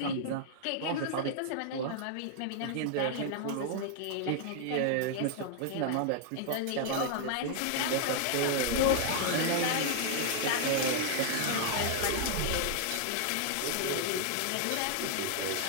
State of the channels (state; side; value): different; both; correlation -0.01